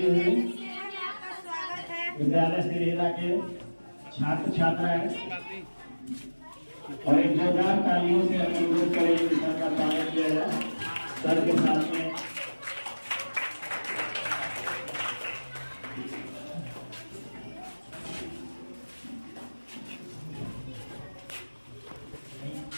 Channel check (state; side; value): inverted; both; correlation -1.00